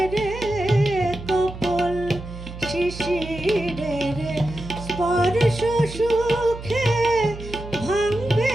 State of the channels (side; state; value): right; noise; hum, 11 dB below the sound